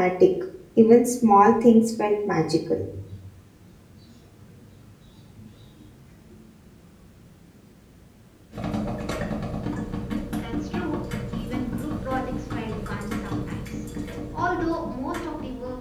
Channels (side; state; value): both; identical; correlation 1.00